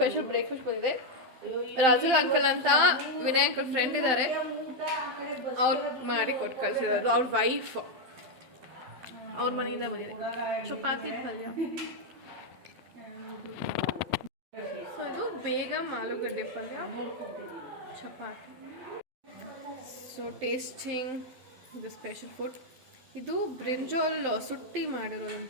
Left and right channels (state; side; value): late; left; 12 ms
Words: ಬ್ರೇಕ್ಫಾಸ್ಟ್ ಬಂದಿದೆ. ರಾಜುಲ್ ಅಂಕಲ್ ಅಂತ ವಿನಯ್ ಅಂಕಲ್ ಫ್ರೆಂಡ್ ಇದ್ದಾರೆ, ಅವ್ರು ಮಾಡಿ ಕೊಟ್ಟು ಕಳಿಸಿದ್ರು. ಅವ್ರ ವೈಫ್ ಅವ್ರ ಮನೆಯಿಂದ ಬಂದಿದೆ. ಚಪಾತಿ ಪಲ್ಯ. ಸೊ ಇದು ಬೇಗ ಆಲೂಗಡ್ಡೆ ಪಲ್ಯ, ಚಪಾತಿ. ಸೊ ಟೇಸ್ಟಿಂಗ್ ಇದು ಸ್ಪೆಷಲ್ ಫುಡ್. ಇದು ಬ್ರಿಂಜಾಲ್ ಸುಟ್ಟಿ